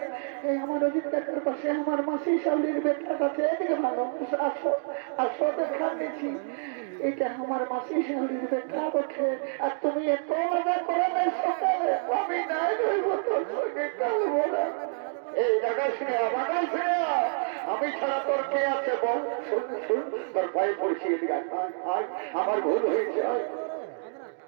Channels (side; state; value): left; silent; digital silence